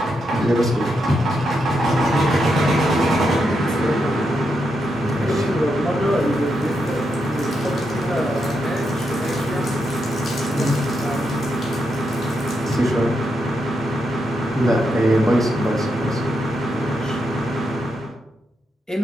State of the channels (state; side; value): normal; both; correlation 0.83